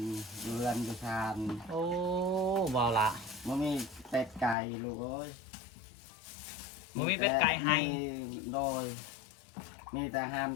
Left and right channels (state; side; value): drops out; right; at 4.5 s